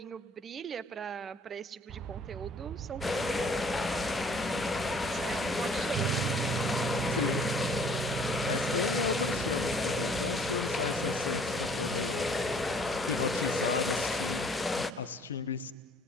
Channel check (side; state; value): both; normal; correlation 0.57